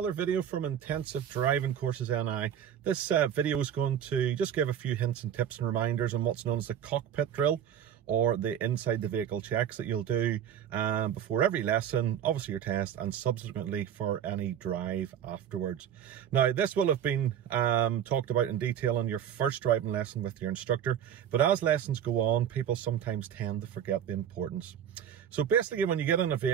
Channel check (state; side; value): quieter; left; 9.4 dB